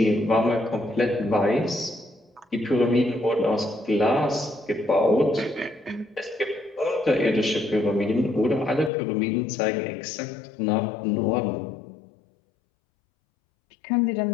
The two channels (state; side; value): drops out; right; at 8.9 s